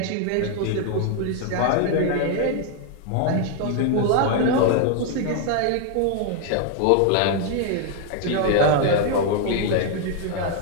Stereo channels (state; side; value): different; both; correlation 0.00